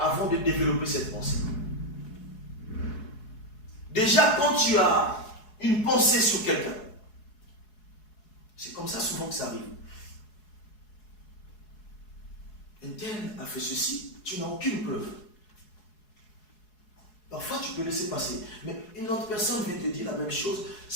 de développer cette pensée. Déjà, quand tu as une pensée sur quelqu'un, c'est comme ça souvent que ça arrive. Un tel a fait ceci, tu n'as aucune preuve. Parfois, tu peux laisser passer. Mais une autre personne vient te dire la même chose.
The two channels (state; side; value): late; right; 4.7 ms